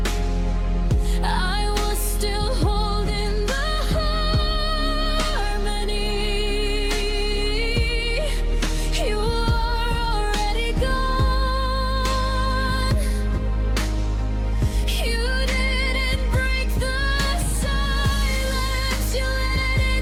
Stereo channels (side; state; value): both; identical; correlation 1.00